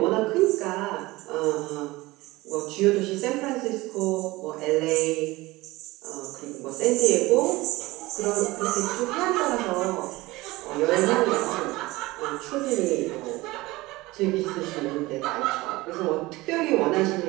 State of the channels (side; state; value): left; quieter; 20.2 dB